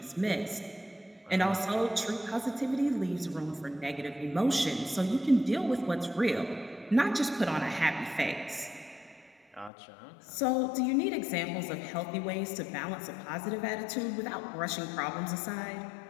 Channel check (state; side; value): drops out; right; at 9.7 s